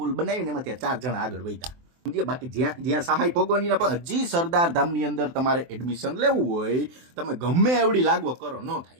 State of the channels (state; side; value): late; left; 23 ms